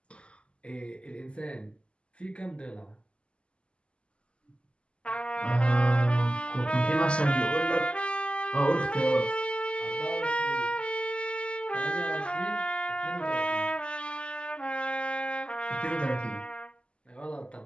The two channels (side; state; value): right; late; 0.054 ms